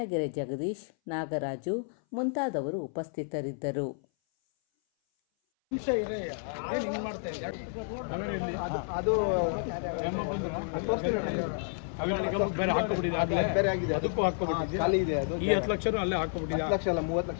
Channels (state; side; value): silent; right; 57 dB below the other